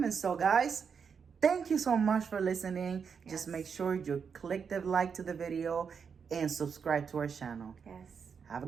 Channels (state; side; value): quieter; left; 6.4 dB